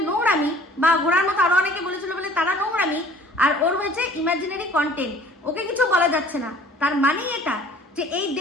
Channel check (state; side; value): normal; both; correlation 0.52